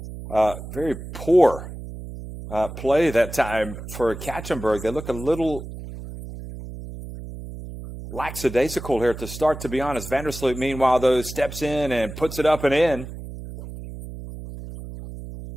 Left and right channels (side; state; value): right; noise; hum, 11 dB below the sound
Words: very poor play that time for Ekaterinburg. They look a little lackadaisical here at the start, to be honest. Van der Sloot, meanwhile, though, steps in and puts it up and in.